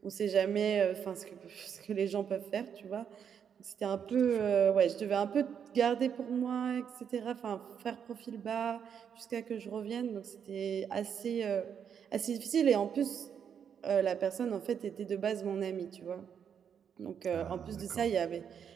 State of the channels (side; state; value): left; quieter; 7.8 dB